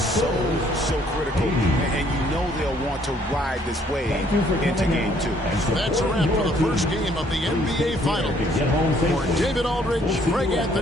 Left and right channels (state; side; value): normal; both; correlation 0.64